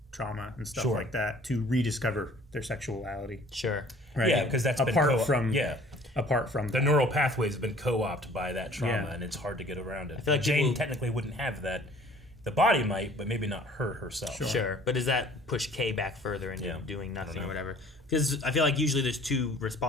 trauma and stuff like that to rediscover their sexuality. Sure. Right. Yeah, because that's apart from the neural pathways have been co-opted by that trauma, Yeah. and it's hard to get around it. I feel like Jane people- technically wouldn't have that. The body might, but maybe not her herself. Sure. But does that push Kay back further into doing nothing or whatever? Because I feel like usually there's two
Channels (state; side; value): normal; both; correlation 0.52